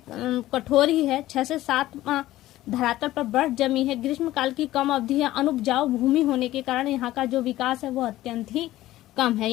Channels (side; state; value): right; quieter; 15.4 dB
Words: कठोर ही है। 6 से 7 माह धरातल पर बर्फ जमी है। ग्रीष्म काल की कम अवधि है। अनुपजाऊ भूमि होने के कारण यहाँ का जो विकास है वो अत्यंत ही कम है।